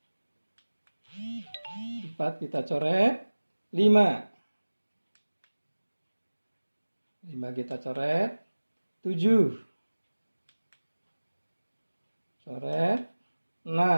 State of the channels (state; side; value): inverted; both; correlation -1.00